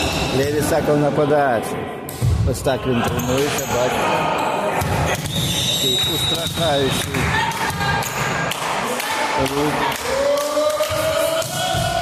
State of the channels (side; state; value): both; identical; correlation 1.00